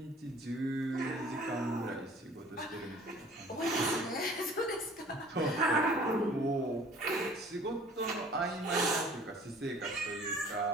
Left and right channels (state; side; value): normal; both; correlation 0.50